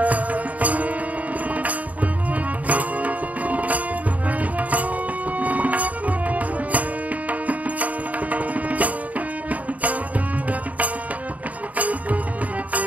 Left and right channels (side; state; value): left; late; 0.071 ms